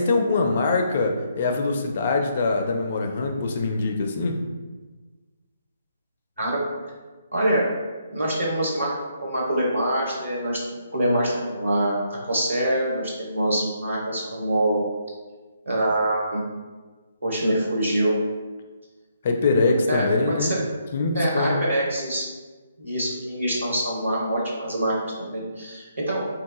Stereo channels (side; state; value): both; inverted; correlation -0.73